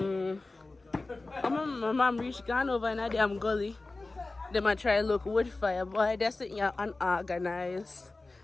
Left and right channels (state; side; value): quieter; right; 3.3 dB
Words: My mom reached gone over in a damn gully. They might try to look wood fire, boy. That's it, yeah, unorganized.